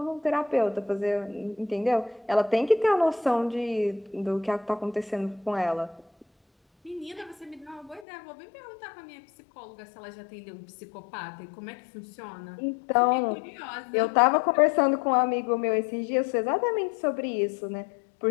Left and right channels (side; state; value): right; drops out; at 8.1 s